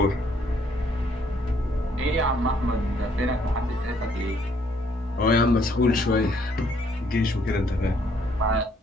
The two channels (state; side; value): normal; both; correlation 0.67